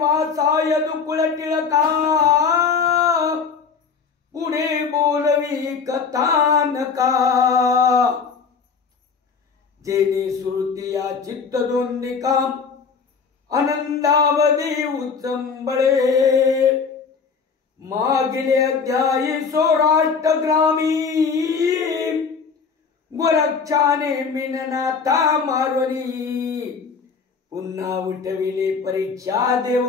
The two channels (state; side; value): quieter; right; 5.6 dB